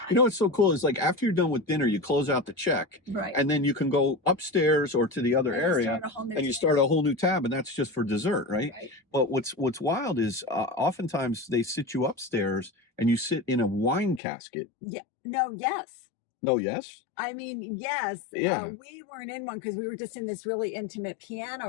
You know what's so cool is like after you're done with dinner, you close out the check, Right. and then you can go upstairs or to the other And you area, start a whole new and you tab. start a whole new tab, and that's just for dessert, right? Right. But what's wild is oftentimes they sit you upstairs and you sit in a wine casket. Yeah. No, yes. No, yes. I mean, yes. Yeah. We weren't in one because we were just in this really intimate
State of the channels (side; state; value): right; drops out; at 14.2 s